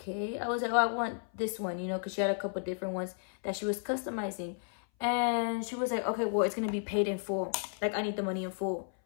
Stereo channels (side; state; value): right; silent; 56 dB below the other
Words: I was like, oh, I want this one, you know, because she had a couple different ones that she was customizing. And she was like, okay, well, it's gonna be paid in full, like, I need the money in full.